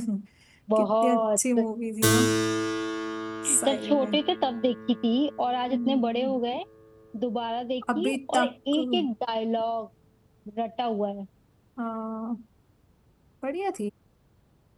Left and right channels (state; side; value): identical; both; correlation 1.00